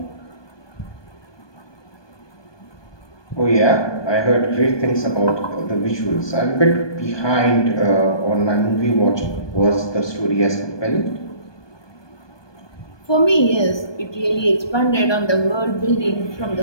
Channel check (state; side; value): late; right; 1.2 ms